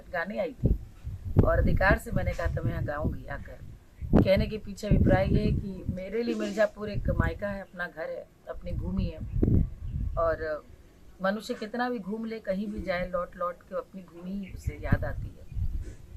आई थी, और अधिकार से मैंने कहा था मैं यहाँ गाऊंगी आकर। कहने के पीछे अभिप्राय ये है कि मेरे लिए मिर्ज़ापुर एक मायका है, अपना घर है, अपनी भूमि है। और मनुष्य कितना भी घूम ले, कहीं भी जाए, लौट लौट के अपनी भूमि ही उसे याद आती है।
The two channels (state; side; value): identical; both; correlation 1.00